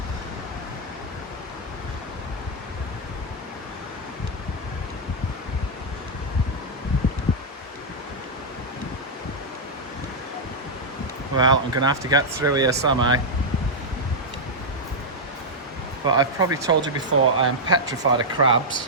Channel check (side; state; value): both; normal; correlation -0.04